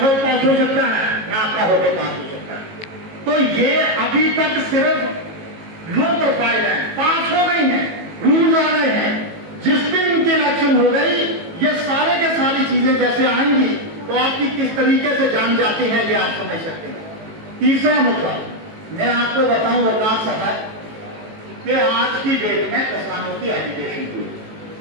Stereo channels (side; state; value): left; late; 18 ms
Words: हाउस पास हो सकता है ना आपका होटल पास हो सकता है। तो ये अभी तक सिर्फ लो प्रोफाइल है, पास हो गई है, रूल्स आ गए हैं। जिस दिन इनकी इलेक्शन हो गई ये सारे के सारी चीजें जैसे आएंगी तो आपकी किस तरीके से जान जाती है ये आप समझ सकते हैं। तीसरा मुद्दा मैं आपको बताऊं वकार साहब कि आज की डेट में किसानों की एजुकेशन हुई